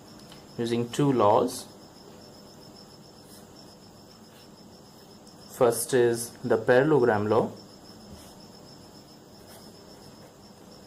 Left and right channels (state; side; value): identical; both; correlation 1.00